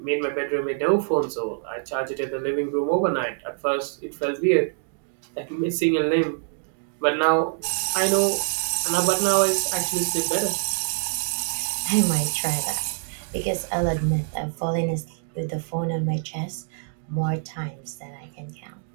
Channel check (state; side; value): silent; left; digital silence